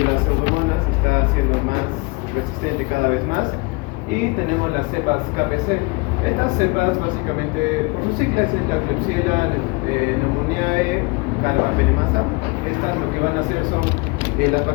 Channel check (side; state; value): right; quieter; 27.2 dB